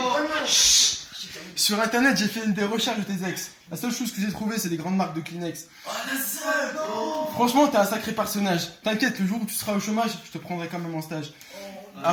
Sur internet, j'ai fait des recherches de tes ex. La seule chose que j'ai trouvée, c'est des grandes marques de Kleenex. Franchement, t'es un sacré personnage. T'inquiète, le jour où tu seras au chômage, je te prendrai quand même en stage.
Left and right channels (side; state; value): both; identical; correlation 1.00